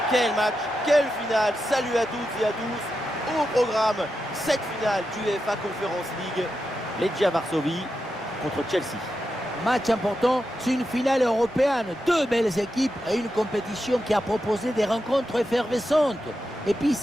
Quel match, quelle finale. Salut à toutes et à tous. Au programme, cette finale du UEFA Conference League. Legia Varsovie contre Chelsea. Match important, c'est une finale européenne. Deux belles équipes et une compétition qui a proposé des rencontres effervescentes. Et puis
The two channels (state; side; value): normal; both; correlation 0.88